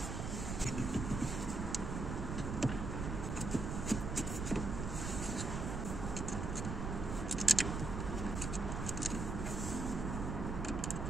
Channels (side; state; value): right; noise; rumble, 3 dB below the sound